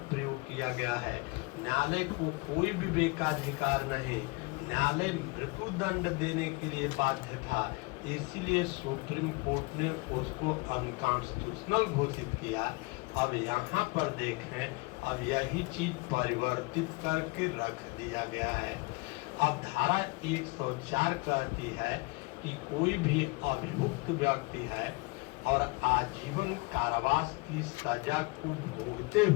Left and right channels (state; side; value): quieter; right; 26.4 dB